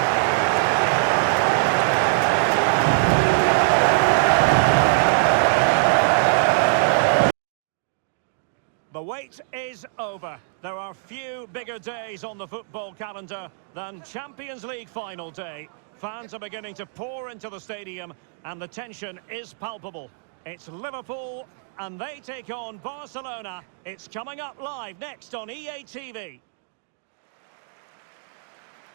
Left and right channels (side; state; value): left; silent; digital silence